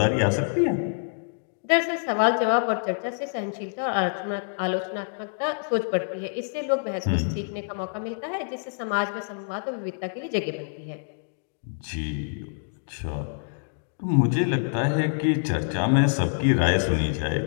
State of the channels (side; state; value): right; silent; digital silence